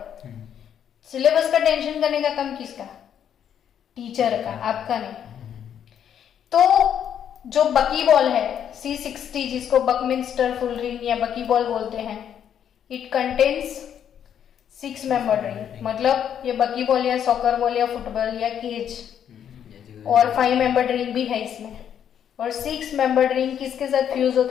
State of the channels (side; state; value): right; quieter; 9.1 dB